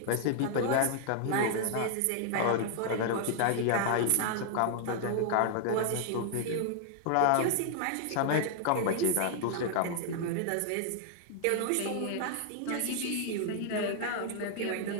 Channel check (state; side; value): different; both; correlation 0.00